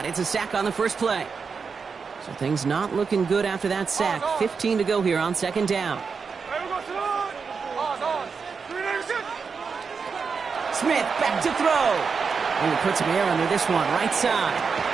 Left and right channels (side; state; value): left; quieter; 5.4 dB